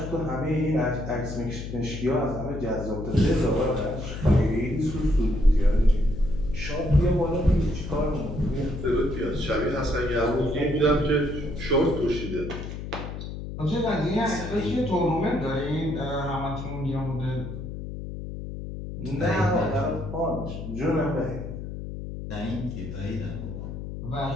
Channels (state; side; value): noise; left; hum, 8 dB below the sound